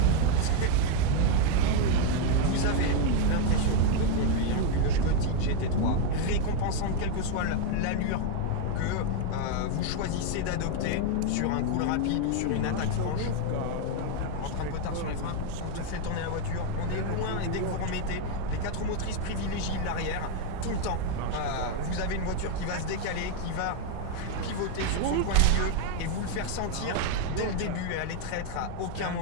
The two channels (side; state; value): both; different; correlation 0.01